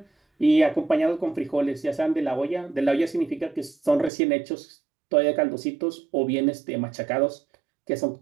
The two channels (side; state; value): left; drops out; at 4.1 s